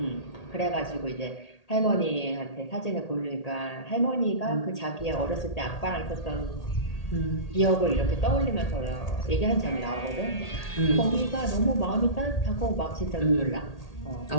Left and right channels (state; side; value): late; right; 1.8 ms